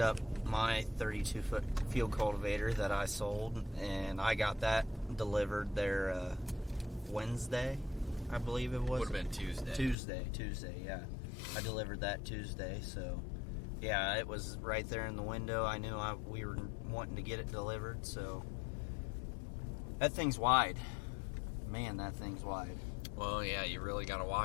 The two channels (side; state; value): right; drops out; at 10.0 s